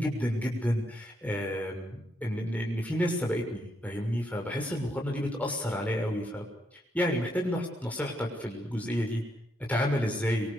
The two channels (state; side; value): normal; both; correlation 0.78